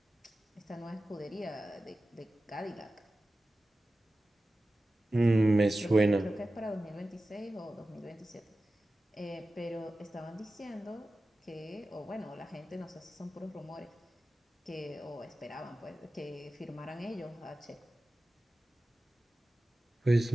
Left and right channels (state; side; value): normal; both; correlation 0.94